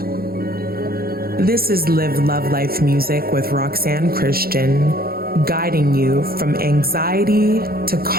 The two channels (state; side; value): late; left; 0.44 ms